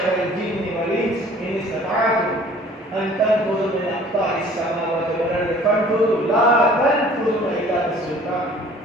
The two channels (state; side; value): normal; both; correlation 0.51